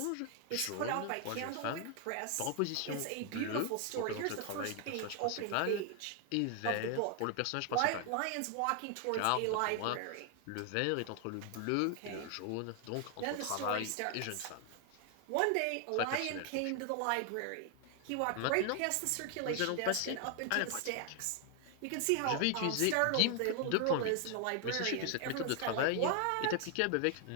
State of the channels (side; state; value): both; different; correlation 0.00